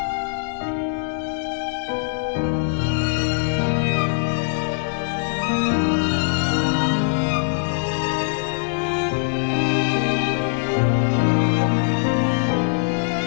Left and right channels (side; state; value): right; silent; digital silence